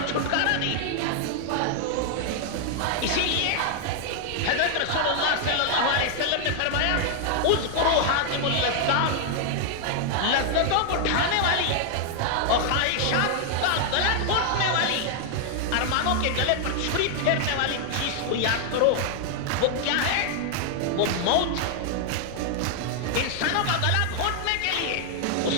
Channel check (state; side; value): different; both; correlation 0.00